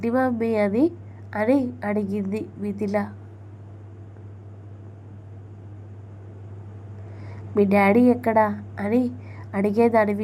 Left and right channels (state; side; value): identical; both; correlation 1.00